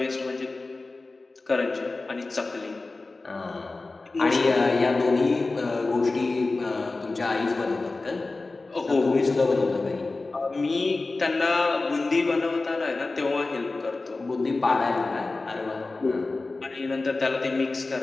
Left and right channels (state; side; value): quieter; right; 3.5 dB